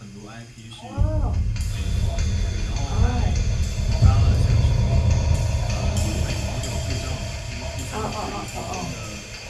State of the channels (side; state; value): both; identical; correlation 1.00